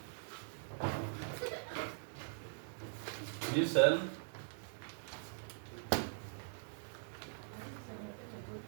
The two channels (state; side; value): silent; left; digital silence